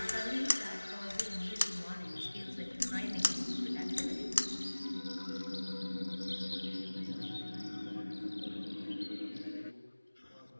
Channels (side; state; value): both; inverted; correlation -1.00